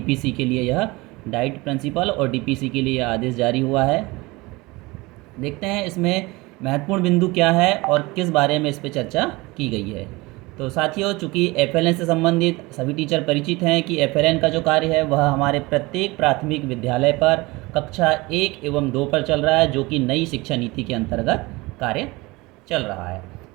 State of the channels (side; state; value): left; quieter; 22.8 dB